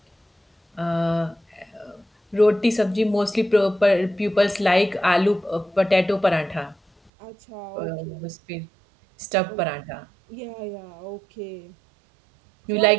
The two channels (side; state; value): left; drops out; at 7.1 s